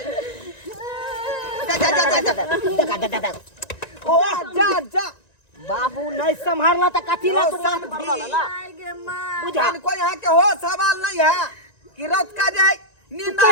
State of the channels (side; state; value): right; late; 1.9 ms